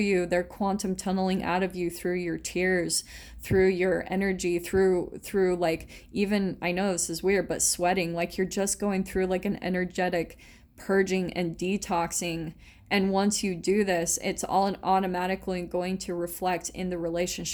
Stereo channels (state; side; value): identical; both; correlation 1.00